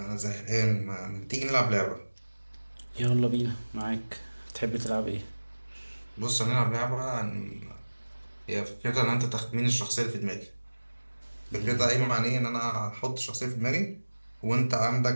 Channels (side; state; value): both; inverted; correlation -1.00